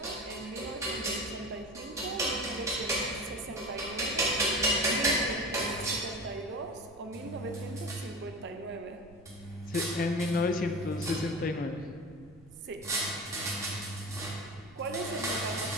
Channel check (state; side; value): noise; right; rumble, 23 dB below the sound